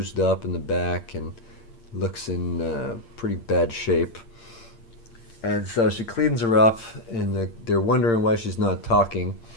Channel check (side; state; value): right; late; 8.7 ms